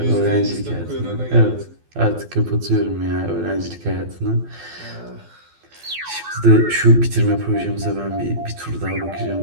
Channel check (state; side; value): late; left; 12 ms